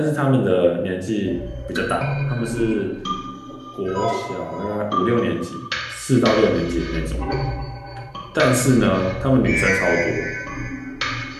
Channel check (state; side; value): identical; both; correlation 1.00